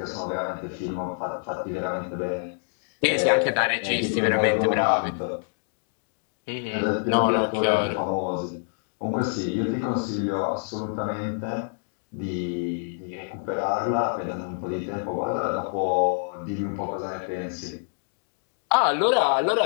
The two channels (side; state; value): right; silent; digital silence